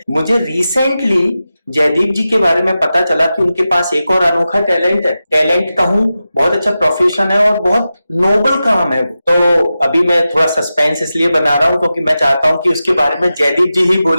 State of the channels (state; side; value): inverted; both; correlation -0.92